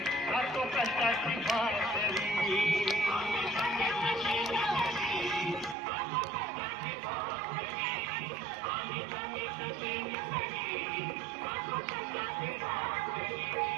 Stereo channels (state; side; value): drops out; left; at 5.8 s